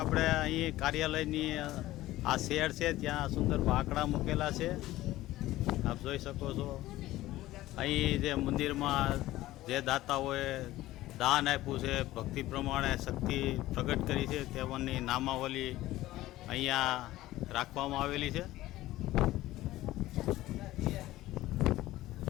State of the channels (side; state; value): right; quieter; 16.2 dB